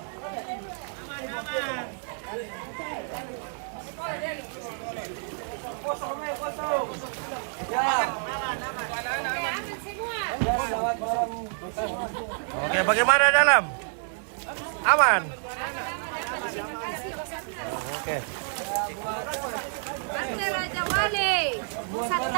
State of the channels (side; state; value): left; silent; 59 dB below the other